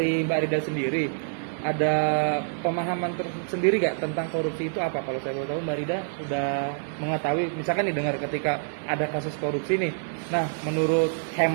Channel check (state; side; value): silent; left; digital silence